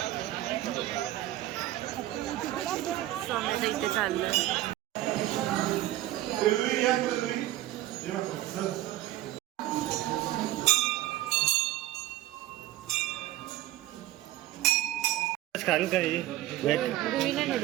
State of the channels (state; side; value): quieter; left; 15.0 dB